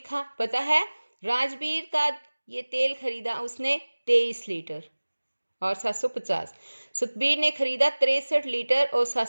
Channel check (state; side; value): inverted; both; correlation -1.00